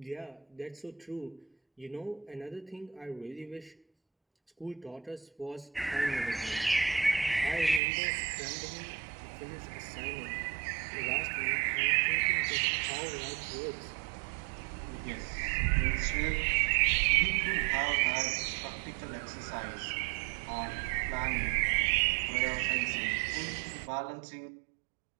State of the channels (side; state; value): left; drops out; at 7.8 s